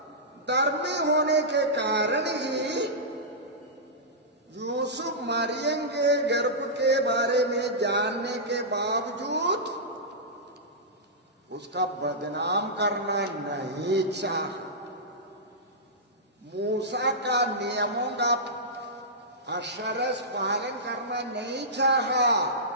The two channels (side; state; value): both; normal; correlation -0.15